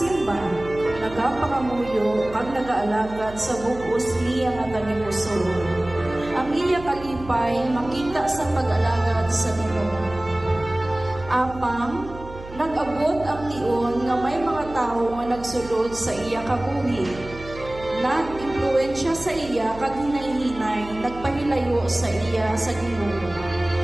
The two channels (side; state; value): right; noise; hum, 15 dB below the sound